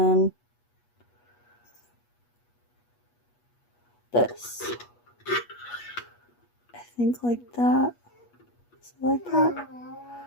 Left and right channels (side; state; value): right; late; 8.3 ms